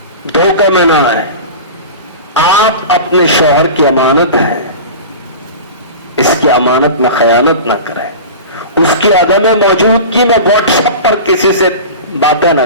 धोखे में ना आए। आप अपने शौहर की अमानत है, इसकी अमानत में खयानत ना करें, उसकी अदम मौजूदगी में व्हाट्सएप पर किसी से बातें ना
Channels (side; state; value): both; inverted; correlation -0.32